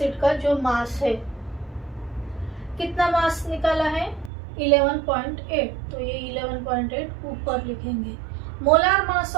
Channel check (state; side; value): drops out; left; at 4.3 s